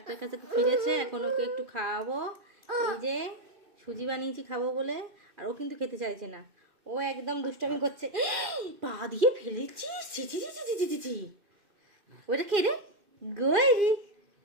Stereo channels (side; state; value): left; late; 2.4 ms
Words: কাছে ফিরেছে, এখন ওকে একটু খাওয়াবো। এই যে সুজি বানিয়েছি খাবো বলে, আর ও কিন্তু খেতে চাইছে না। ও একদম দুষ্টামি করছে। পা দিয়ে ফেলেছি, ওটা কে রে? গৈরি,